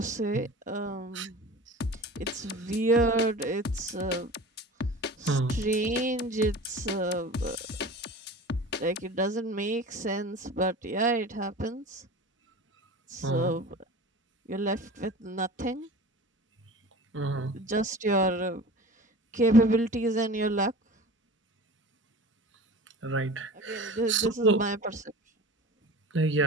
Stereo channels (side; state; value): both; normal; correlation 0.37